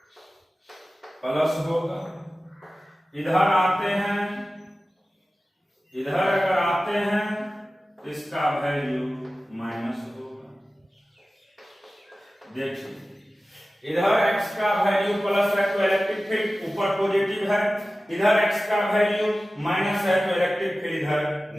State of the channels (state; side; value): normal; both; correlation 0.96